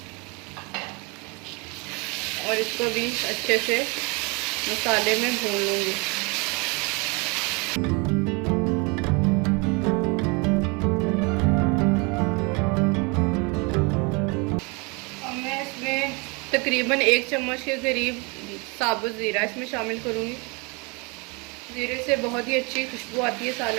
और इसको भी अच्छे से मसाले में भून लूँगी। तकरीबन 1 चम्मच के करीब साबुत ज़ीरा इसमें शामिल करूँगी। ज़ीरे से बहुत ही अच्छी खुशबू आती है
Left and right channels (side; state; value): left; quieter; 29.7 dB